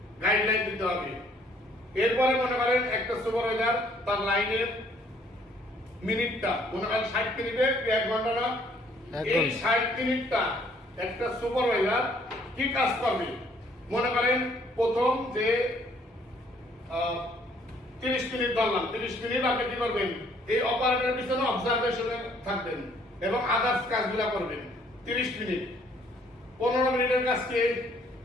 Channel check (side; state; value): both; normal; correlation 0.63